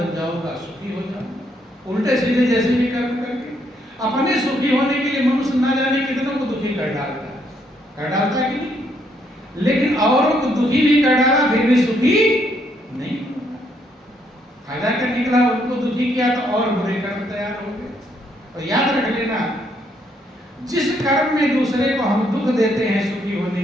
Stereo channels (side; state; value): both; normal; correlation 0.72